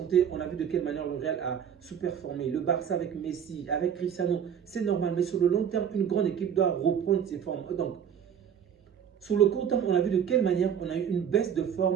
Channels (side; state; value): left; quieter; 8.4 dB